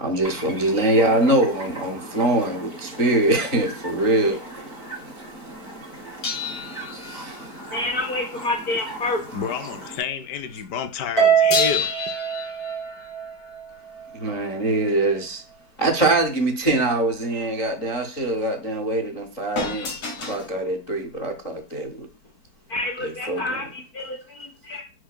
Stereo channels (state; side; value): late; right; 4.5 ms